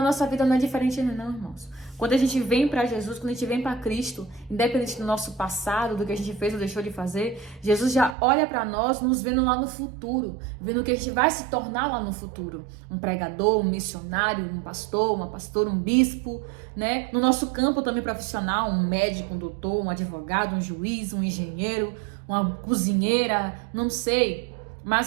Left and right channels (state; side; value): drops out; left; at 8.2 s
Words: vida não é diferente não, irmãos. Quando a gente vem para Jesus, quando a gente vem para Cristo, independente do nosso passado, do que a gente fez ou deixou de fazer, Jesus já olha para nós, nos vendo lá no futuro, vendo o que a gente vai se tornar lá no futuro. Um pregador, um missionário, um pastor, uma pastora, um bispo, né? No nosso campo também profissional, um médico, um doutor, um advogado, um juiz, um engenheiro, uma cozinheira, não sei.